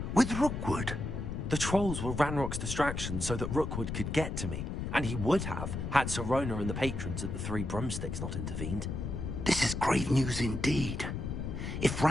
with Rookwood. The trolls were Ranrock's distraction so that Rookwood could get to me, and he would have had Sirona and the patrons at the Three Broomsticks not intervened. This is grave news indeed. If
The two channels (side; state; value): left; noise; rumble, 4 dB below the sound